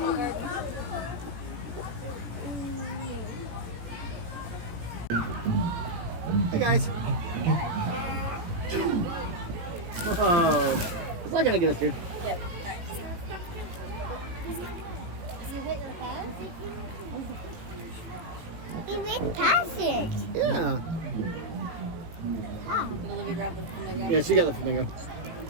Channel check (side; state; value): left; late; 18 ms